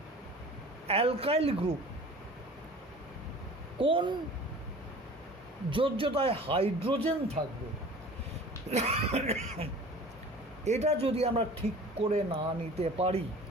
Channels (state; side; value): normal; both; correlation 0.43